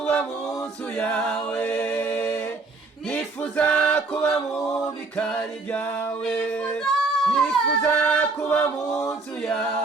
mu nzu yawe, nifuza kuba mu bikari byawe, nifuza kuba mu nzu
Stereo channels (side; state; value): left; quieter; 3.7 dB